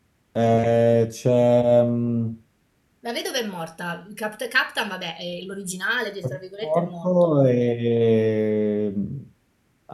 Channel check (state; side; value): identical; both; correlation 1.00